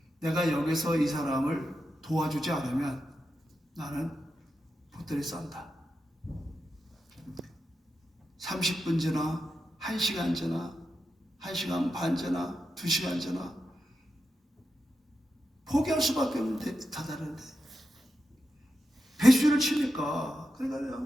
내가 여기서 이 사람을 도와주지 않으면 나는 보따리 싼다. 30분 지나, 1시간 지나, 1시간 반 지나, 2시간 지나, 포기할 수밖에 없는데 다다른데 배수를 치니까,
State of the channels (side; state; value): both; normal; correlation 0.88